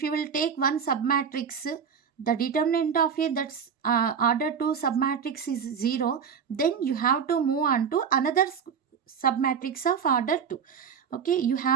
you will take one submatrix, the determinant of a that's order 2 submatrix is 0, then you have to move on to another submatrix of order 2. Okay, you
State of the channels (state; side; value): quieter; left; 6.9 dB